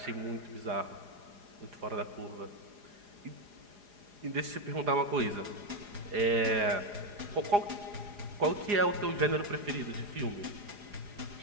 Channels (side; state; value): left; late; 4.9 ms